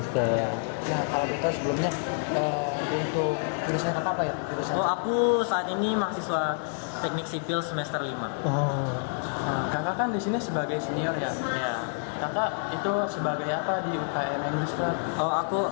Ya. Nah, kalau kita sebelumnya untuk jurusan apa ya? Oh, aku saat ini mahasiswa Teknik Sipil semester 5. Oh, Nah, kakak kan di sini sebagai senior ya. Ya. Kakak itu sebagai apa di UKM English Club? Oh, aku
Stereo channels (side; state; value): right; silent; digital silence